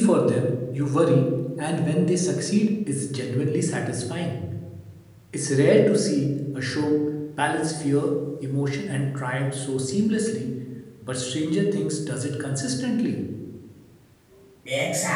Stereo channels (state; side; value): identical; both; correlation 1.00